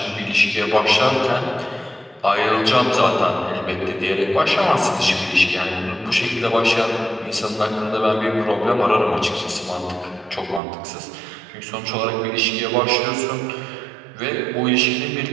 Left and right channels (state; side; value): drops out; left; at 10.6 s